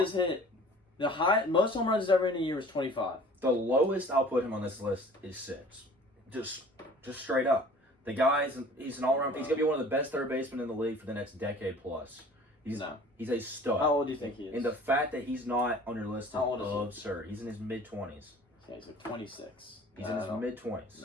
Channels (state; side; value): normal; both; correlation 0.47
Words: hit the most home runs ever in a year is 25. The lowest I'll put him on this list is 6. Just straight up. The he's an all-around. He's gonna be one of the best third basemen in the league for the next decade plus. He's a stud. How old do you think he is? And the fact that he's not on your list is absurd. He? He's in his mid-20s. Yeah, he's like 26. He's in his